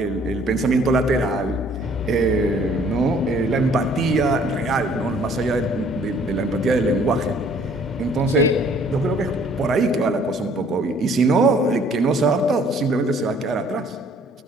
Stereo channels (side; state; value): both; normal; correlation 0.58